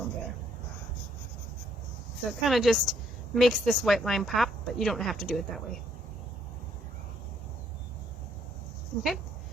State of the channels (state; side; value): normal; both; correlation 0.69